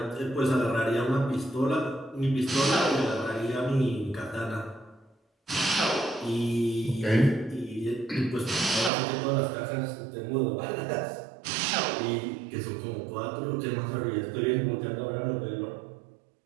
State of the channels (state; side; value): drops out; left; at 8.9 s